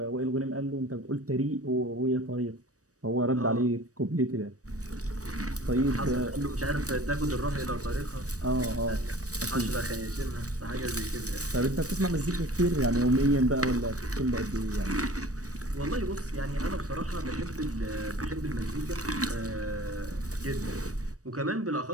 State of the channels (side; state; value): left; late; 0.66 ms